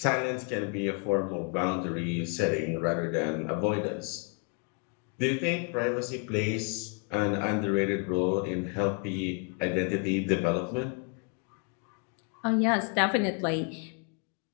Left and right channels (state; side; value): quieter; right; 35.8 dB